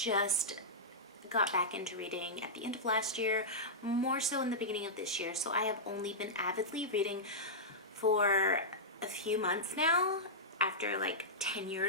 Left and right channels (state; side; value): normal; both; correlation -0.11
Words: got back into reading at the end of last year, more so in the beginning of this year, so I have only been avidly reading for a few months now, after like 10